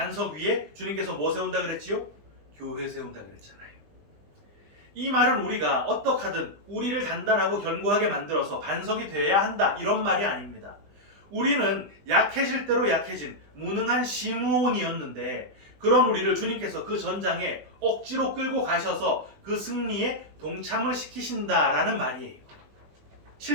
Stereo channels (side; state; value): left; late; 20 ms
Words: 위에 주님께서 뭐 세운다 그랬지요? 교회 세운다 그랬잖아요. 이 말은 우리가 어떻게 하든 우리를 단단하고 견고하게 만들어서 반석이 되어야 한다, 이런 말이 아닙니다. 우리는 약해질 대로 약해진 무능한 시므온이었는데, 그런 우리를 주님께서 그 전장에 억지로 끌고 가셔서 그 승리에 동참을 시키신다라는 말이에요.